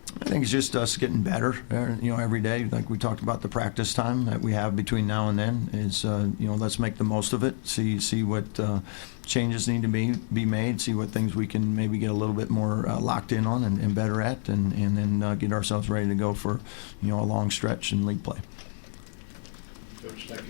I think it's just us getting better, every day. Like we talked about the practice time that we have between now and then is, let's make the most of it. See what changes need to be made. See what things we can maybe get a little bit more locked in on and better at, and then get ourselves ready to go for, a long stretch in league play. Coach, thank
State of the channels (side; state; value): right; silent; digital silence